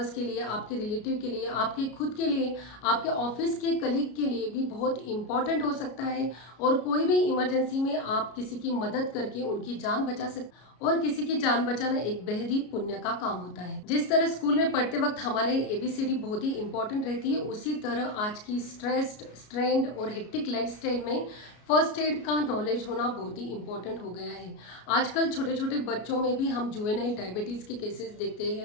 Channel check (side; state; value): right; late; 33 ms